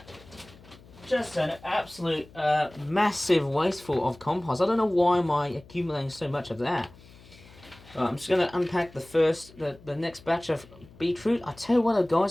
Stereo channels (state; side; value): noise; left; hum, 23 dB below the sound